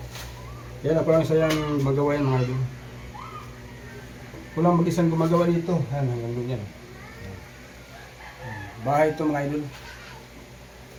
Yan ako lang sa yung magawa yan mga idol. Kulang mag-isang gumagawa dito. Yan, hanggang doon yan. Bahay ito mga idol.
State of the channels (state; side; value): identical; both; correlation 1.00